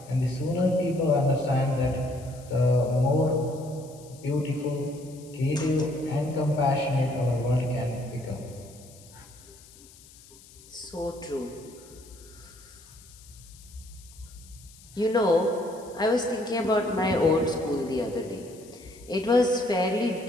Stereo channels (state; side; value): noise; left; hiss, 23 dB below the sound